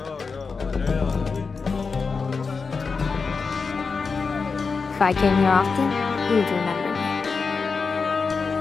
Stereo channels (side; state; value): right; quieter; 4.9 dB